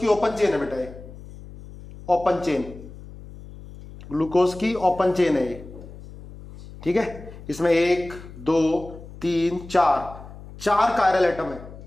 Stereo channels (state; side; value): noise; left; hum, 16 dB below the sound